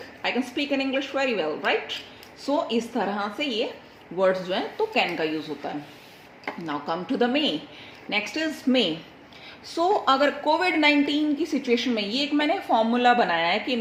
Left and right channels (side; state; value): both; identical; correlation 1.00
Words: I can speak in English very well, right. So इस तरह से ये words जो हैं तो can का use होता है. Now come to the may. Next is may. So अगर कोविड-19 की सिचुएशन में, ये एक मैंने फॉर्मूला बनाया है कि